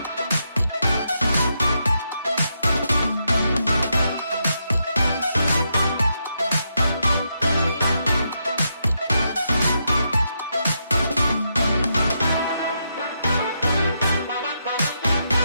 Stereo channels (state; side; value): inverted; both; correlation -0.81